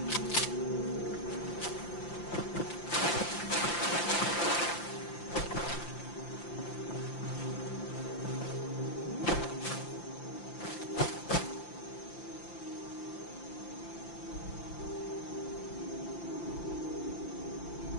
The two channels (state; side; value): late; right; 5.8 ms